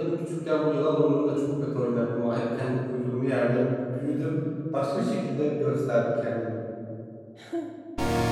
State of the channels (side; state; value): both; identical; correlation 1.00